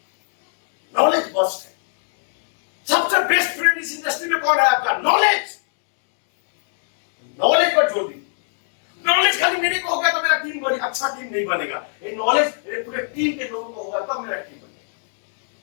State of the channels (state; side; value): silent; right; digital silence